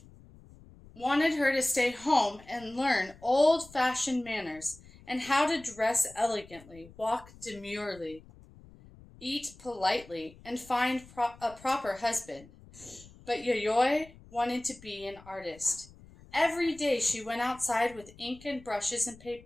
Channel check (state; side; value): noise; left; rumble, 22 dB below the sound